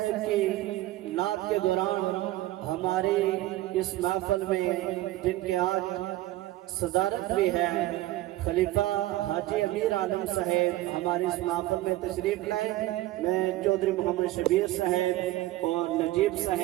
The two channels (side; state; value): left; quieter; 16.3 dB